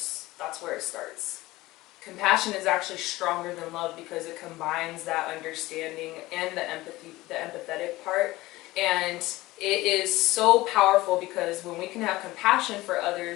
that's where it starts. Compassion is actually stronger than love because it combines that understanding and the empathy, the empathetic part. And it is so powerful because when we can have compassion for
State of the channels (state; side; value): quieter; right; 18.7 dB